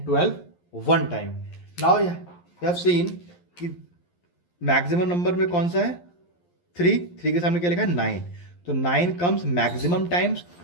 12 1 time. Now you have seen कि मैक्सिमम नंबर में कौन सा है, 3 के सामने क्या लिखा है, 9। तो 9 comes maximum times,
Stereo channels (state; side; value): late; right; 11 ms